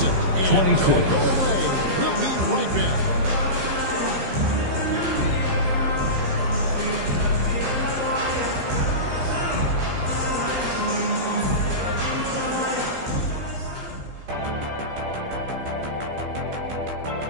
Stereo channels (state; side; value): late; left; 15 ms